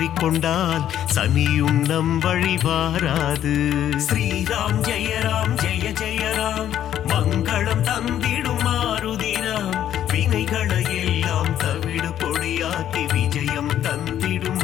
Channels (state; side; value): quieter; right; 10.9 dB